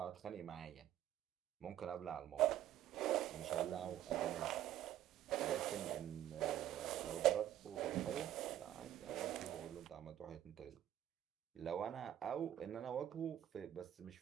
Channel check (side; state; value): left; quieter; 12.0 dB